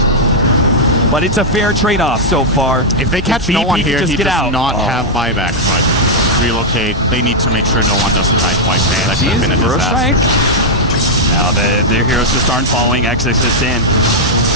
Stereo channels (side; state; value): both; normal; correlation -0.04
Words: but it's a fair trade-off so far. If they catch no one here, he does not have buyback, but relocate. They need to make sure no one doesn't die twice. Man, that could have been a disaster. Now their heroes just aren't following XXS in.